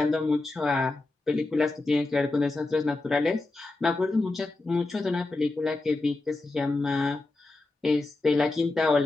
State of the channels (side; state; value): right; quieter; 3.1 dB